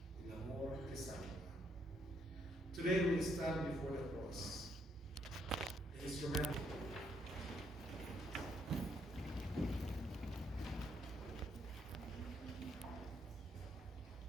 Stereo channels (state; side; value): normal; both; correlation 0.73